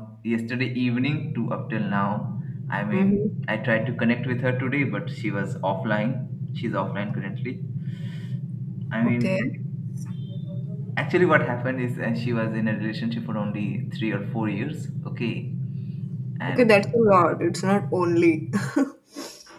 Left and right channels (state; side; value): identical; both; correlation 1.00